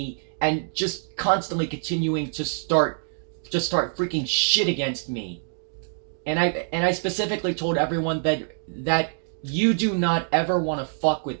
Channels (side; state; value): left; silent; digital silence